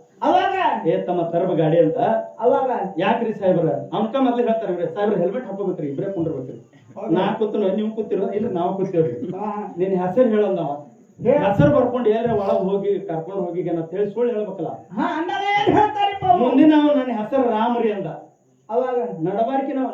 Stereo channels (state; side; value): identical; both; correlation 1.00